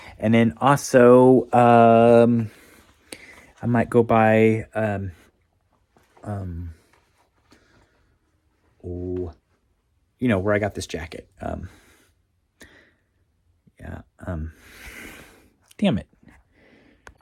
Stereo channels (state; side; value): identical; both; correlation 1.00